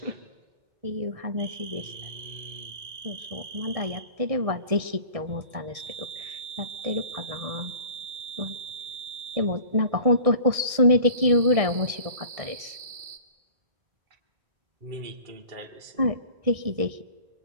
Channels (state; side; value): late; left; 1.6 ms